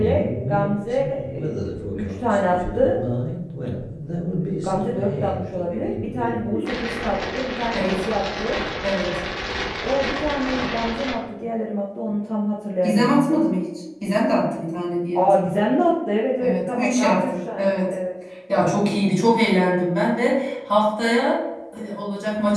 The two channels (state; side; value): identical; both; correlation 1.00